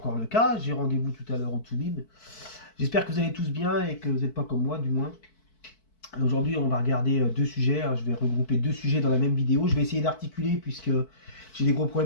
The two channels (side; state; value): right; late; 4.6 ms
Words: le cas. J'ai rendez-vous tout à l'heure au Toubib. J'espère que vous allez tous bien et que vous n'êtes pas comme moi du moins. Aujourd'hui on va regarder deux sujets, hein. Je vais regrouper deux sujets dans la même vidéo. Je vais essayer d'articuler puisque j'ai des gros